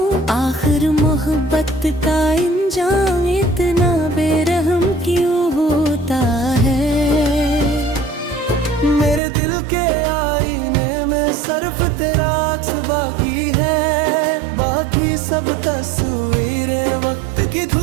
आखिर मोहब्बत का इंजाम इतना बेरहम क्यों होता है। मेरे दिल के आईने में सिर्फ तेरा अक्स बाकी है, बाकी सब तस्वीरें वक्त की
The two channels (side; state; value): left; drops out; at 9.2 s